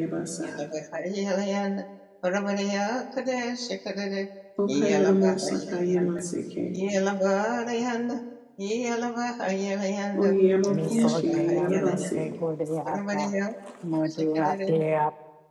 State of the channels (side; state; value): both; identical; correlation 1.00